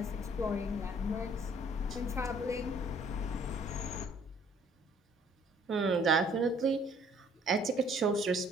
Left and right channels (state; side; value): normal; both; correlation 0.59